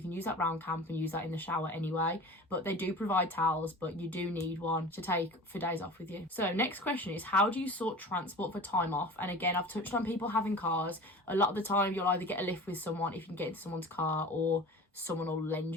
can use that round camp and use that in the shower anyway, but they do provide towels, but you do need one to take for days off with you. So next question is, how do you sort transport for time off? And again, I've touched on people having cars. A lot of the time you'll either get a lift with someone if you can get into someone's car, or someone will lend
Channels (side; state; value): both; normal; correlation 0.38